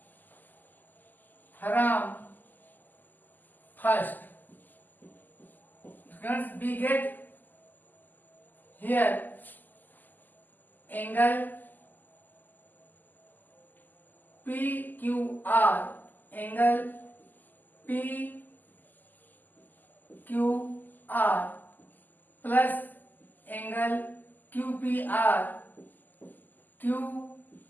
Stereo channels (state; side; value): late; right; 0.086 ms